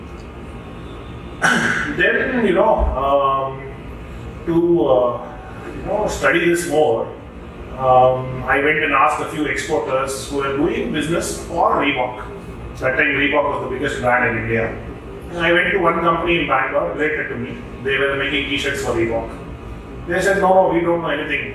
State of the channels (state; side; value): identical; both; correlation 1.00